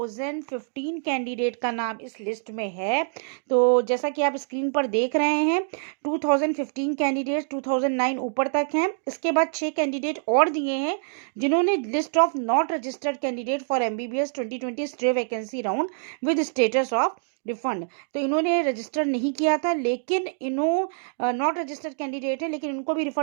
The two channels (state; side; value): silent; left; digital silence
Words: कैंडिडेट का नाम इस लिस्ट में है। तो जैसा कि आप स्क्रीन पर देख रहे हैं, 2015 कैंडिडेट 2009 ऊपर तक हैं। इसके बाद 6 कैंडिडेट और दिए हैं जिन्होंने list of not registered candidate for MBBS 2020 stay vacancy round with status of refund. तो इन्होंने रजिस्टर नहीं किया था, लेकिन इन्हों नॉट रजिस्टर्ड कैंडिडेट है, लेकिन इनको भी